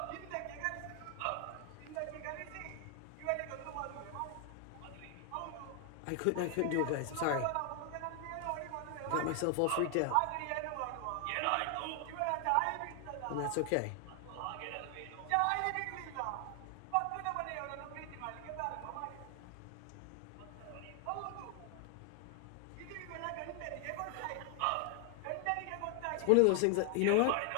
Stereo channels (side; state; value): both; different; correlation 0.00